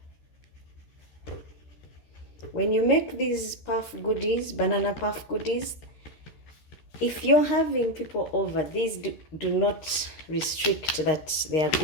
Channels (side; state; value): right; late; 13 ms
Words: When you make these puff goodies, banana puff goodies, if you're having people over, these do not restrict that they are